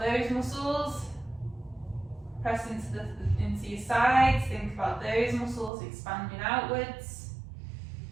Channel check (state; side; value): drops out; left; at 5.7 s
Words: muscles, press into your sides. Think about those muscles expanding outwards.